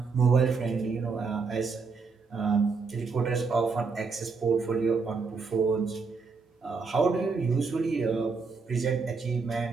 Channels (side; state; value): left; quieter; 4.7 dB